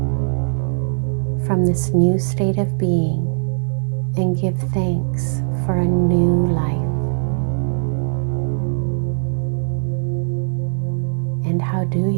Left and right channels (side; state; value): left; silent; digital silence